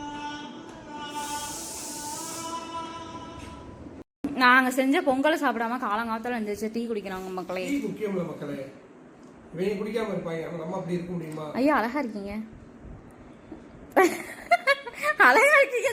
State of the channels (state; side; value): identical; both; correlation 1.00